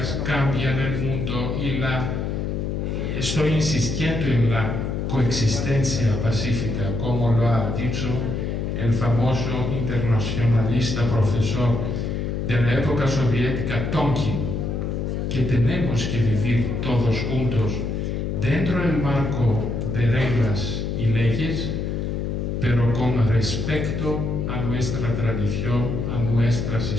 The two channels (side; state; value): left; noise; hum, 2 dB below the sound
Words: cambian el mundo y estoy insistiendo en la coexistencia pacífica, como lo ha dicho el famoso internacionalista profesor de la época soviética Tonkin, que tenemos que vivir todos juntos dentro del marco de reglas y leyes, pero con respeto a nuestra tradición, a nuestras